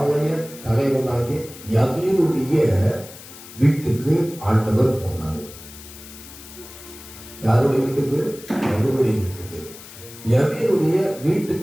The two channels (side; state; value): left; noise; hiss, 17 dB below the sound